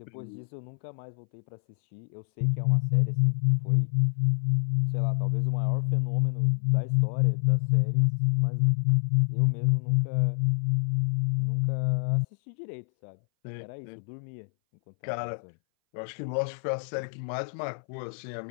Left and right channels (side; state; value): right; silent; 60 dB below the other